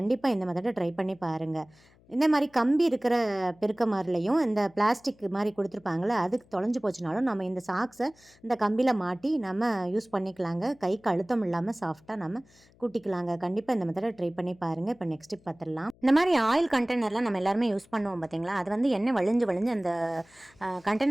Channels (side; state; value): left; noise; hum, 29 dB below the sound